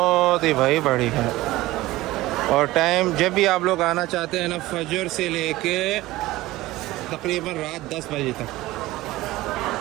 ही भाई बड़ी है और टाइम जब भी आप लोग आना चाहते हैं ना फजर से लेके तकरीबन रात 10 बजे तक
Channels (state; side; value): quieter; left; 17.9 dB